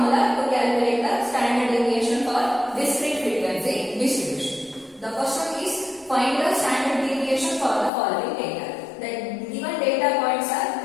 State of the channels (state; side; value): drops out; right; at 7.9 s